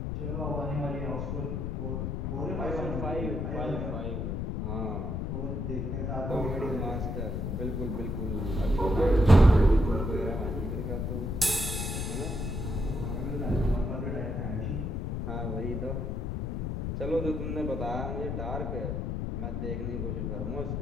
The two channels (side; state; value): left; noise; rumble, 2 dB below the sound